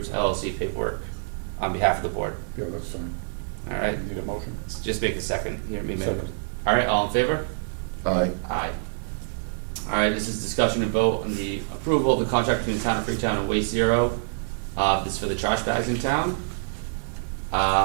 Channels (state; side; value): silent; left; 61 dB below the other